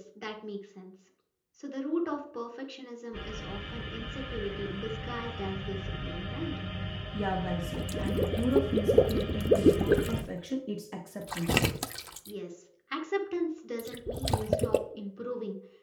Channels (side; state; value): both; identical; correlation 1.00